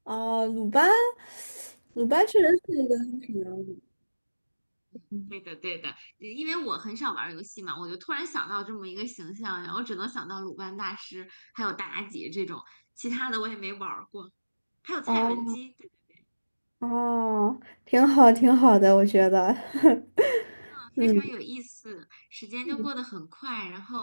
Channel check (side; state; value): both; inverted; correlation -1.00